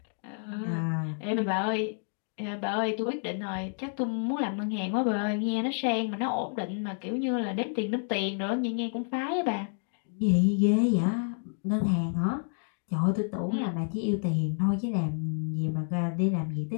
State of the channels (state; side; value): silent; right; 58 dB below the other